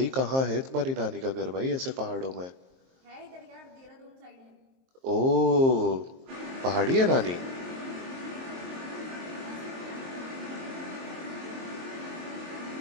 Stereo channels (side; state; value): left; late; 23 ms